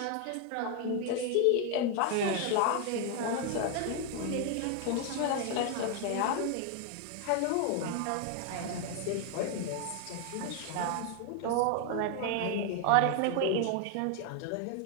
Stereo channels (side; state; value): both; different; correlation 0.00